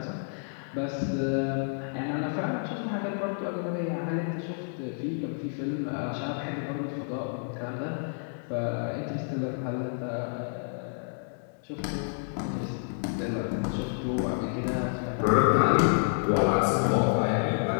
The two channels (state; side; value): silent; right; digital silence